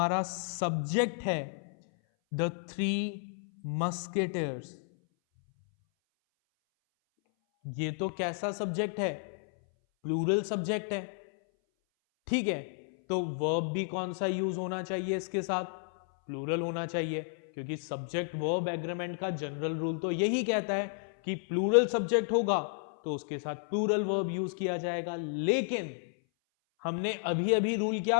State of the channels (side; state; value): right; silent; 56 dB below the other